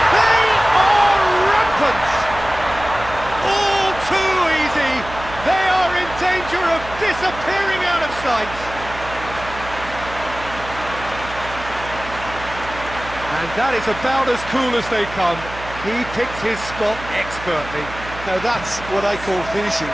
They are rampant! All too easy! They are in danger of disappearing out of sight! And that is about as cool as they come. He picked his spot expertly. Now that's what I call finishing,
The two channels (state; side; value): noise; right; hum, 13 dB below the sound